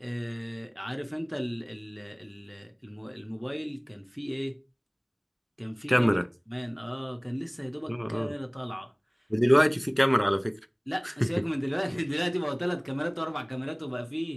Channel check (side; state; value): both; identical; correlation 1.00